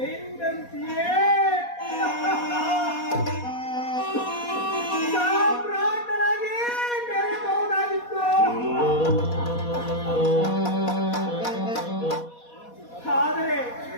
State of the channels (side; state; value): right; late; 4.2 ms